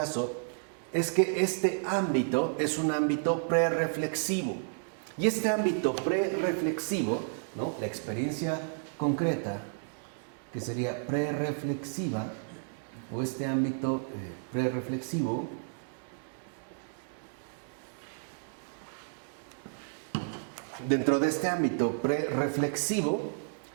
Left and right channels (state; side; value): silent; left; digital silence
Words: es que este ámbito es un ámbito prerreflexivo. Y este ámbito prerreflexivo, ¿no?, la experiencia concreta, que sería prerreflexiva, o este ámbito prerreflexivo, dentro de este ámbito prerreflexivo,